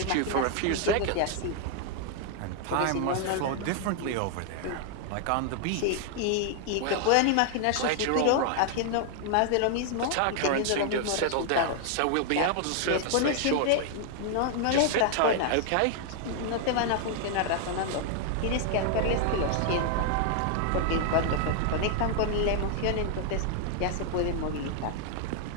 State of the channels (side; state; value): both; different; correlation 0.00